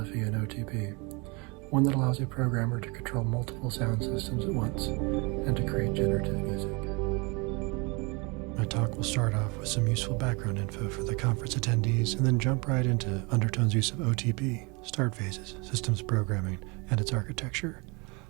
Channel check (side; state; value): left; quieter; 29.1 dB